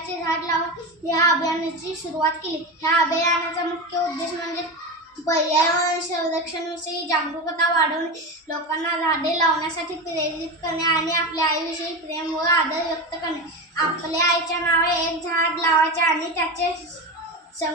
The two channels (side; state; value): both; normal; correlation 0.21